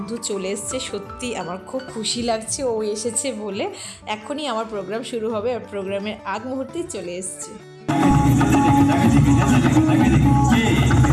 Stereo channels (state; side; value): identical; both; correlation 1.00